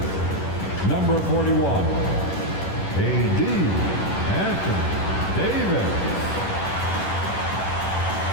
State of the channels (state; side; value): late; right; 10 ms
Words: number 41, A.D. Anthony Davis.